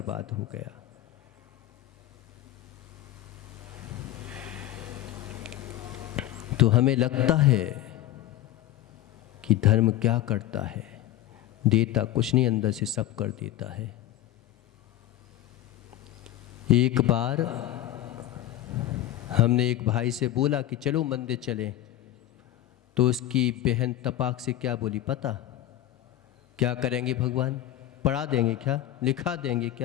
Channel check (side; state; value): right; quieter; 13.7 dB